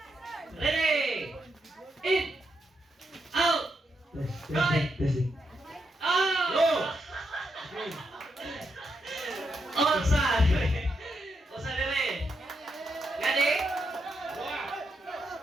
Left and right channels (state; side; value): normal; both; correlation 0.82